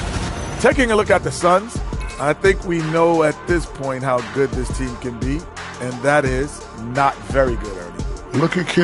Taking a look at the Suns, I think we know at this point how good this team can be, and that is not very good, Ernie. Look at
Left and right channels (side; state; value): both; identical; correlation 1.00